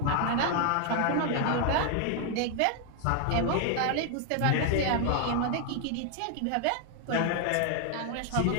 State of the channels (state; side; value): different; both; correlation 0.00